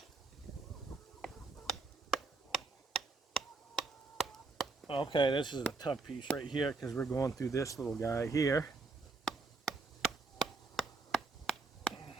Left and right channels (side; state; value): left; quieter; 3.7 dB